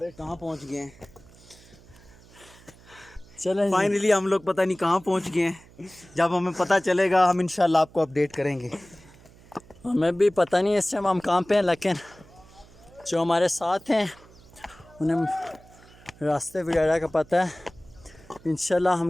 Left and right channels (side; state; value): right; noise; hum, 24 dB below the sound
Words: कहाँ पहुँच गए हैं. चलें फाइनली हम लोग पता नहीं कहाँ पहुँच गए हैं. जब हमें पता चलेगा हम इंशाल्लाह आपको अपडेट करेंगे. हमें भी पता नहीं इस टाइम हम कहाँ पे हैं, लेकिन जो हमारे साथ हैं उन्हें रास्ते वगैरह का पता है. इंशाल्लाह